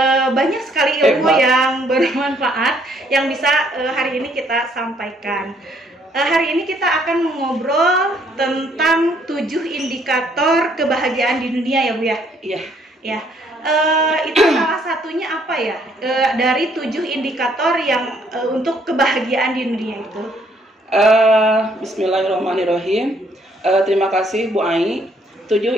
Banyak sekali ilmu yang bermanfaat yang bisa hari ini kita sampaikan. Hari ini kita akan mengobrol tentang 7 indikator kebahagiaan di dunia ya Bu ya? Iya. Ya, itu salah satunya apa ya? Dari 7 indikator yang untuk kebahagiaan di dunia itu. Bismillahirrahmanirrahim. Terima kasih Bu Ai. 7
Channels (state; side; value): normal; both; correlation 0.66